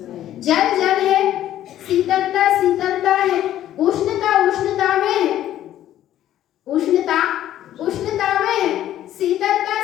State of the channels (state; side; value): quieter; right; 12.3 dB